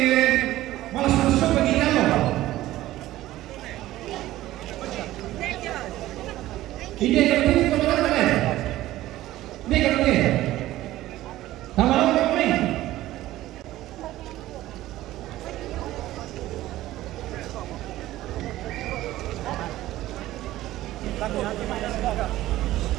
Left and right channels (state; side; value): quieter; left; 15.5 dB